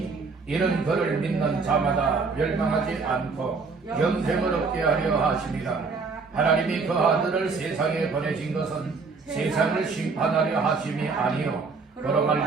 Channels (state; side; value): quieter; left; 4.5 dB